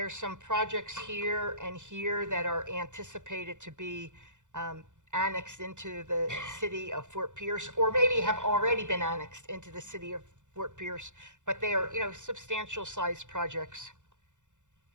some projects here and here that are anticipated to be annexed into the city of Fort Pierce, or maybe have already been annexed into the city of Fort Pierce, but they are, substantial sized projects.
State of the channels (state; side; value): late; left; 0.85 ms